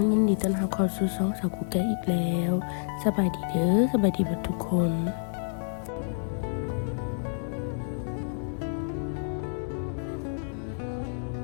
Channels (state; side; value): silent; right; 59 dB below the other